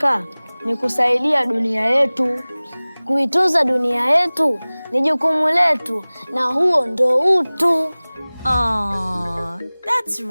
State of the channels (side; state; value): both; inverted; correlation -1.00